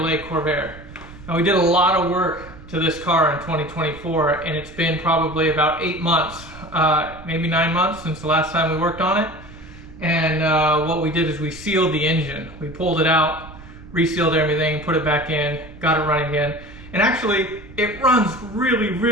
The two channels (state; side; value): noise; right; rumble, 18 dB below the sound